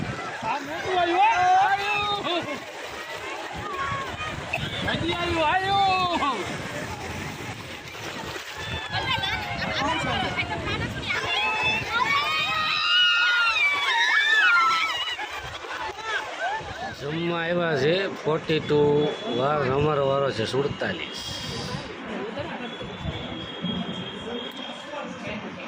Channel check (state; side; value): identical; both; correlation 1.00